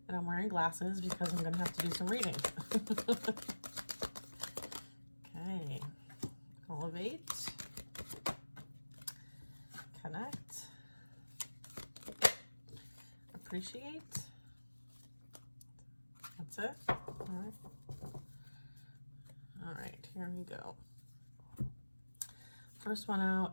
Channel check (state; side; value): inverted; both; correlation -1.00